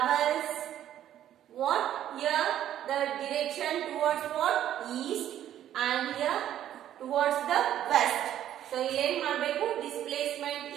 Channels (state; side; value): quieter; left; 11.4 dB